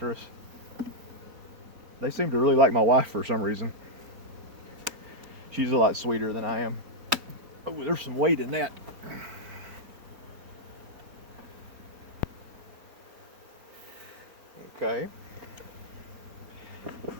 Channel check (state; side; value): late; left; 4.1 ms